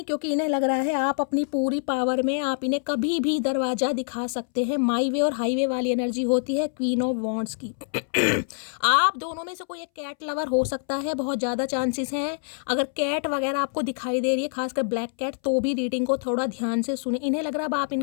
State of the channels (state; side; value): silent; right; 61 dB below the other